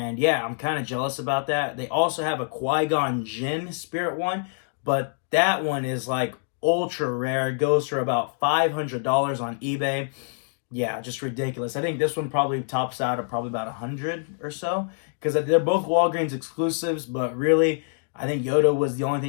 yeah, I'm kind of jealous about that. They also have a Qui-Gon Jinn Spirit one, but that one is like ultra rare. It goes for about $500 on eBay. Yeah, just ridiculous. I think this one probably tops out at probably about 100 or so, because they're both Walgreens exclusives, but really, I think Yoda was the only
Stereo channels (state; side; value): silent; right; digital silence